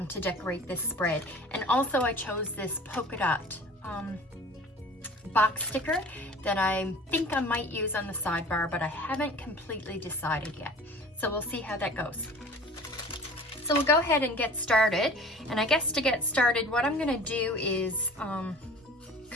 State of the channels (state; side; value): normal; both; correlation 0.43